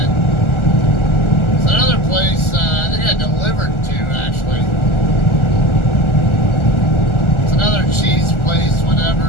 it's another place I think I delivered to actually. It's another cheese place, whatever.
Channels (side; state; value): right; late; 1.4 ms